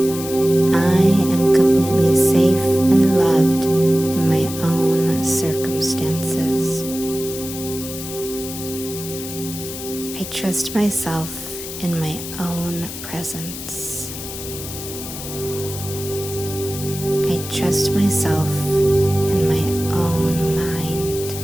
I am completely safe and loved in my own circumstances. I trust myself in my own presence. I trust myself in my own mind.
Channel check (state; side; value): noise; left; hiss, 10 dB below the sound